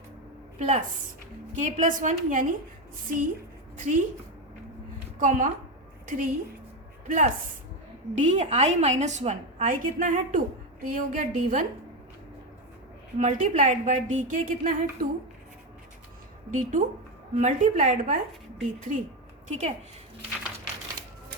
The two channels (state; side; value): normal; both; correlation 0.12